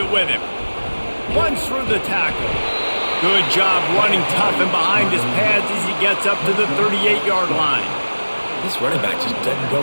with him. Runs through the tackle. Good job running tough and behind his pads as he gets up to the 38-yard line. This running back just doesn't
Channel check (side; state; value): both; inverted; correlation -1.00